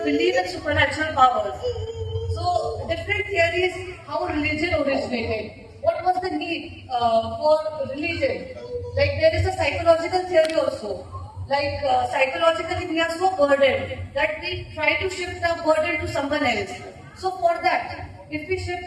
belief in supernatural powers. So different theories, how religion originated. What was the need for religion? Like there is a psychological theory also. Like psychologically we are so burdened that we try to shift our burden to someone else. So for that, if we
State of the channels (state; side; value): identical; both; correlation 1.00